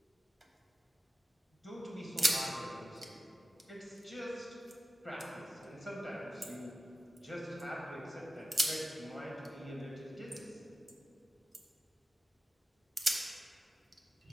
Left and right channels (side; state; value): both; normal; correlation 0.95